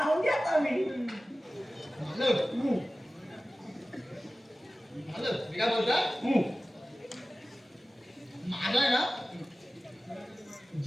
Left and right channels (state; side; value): normal; both; correlation 0.96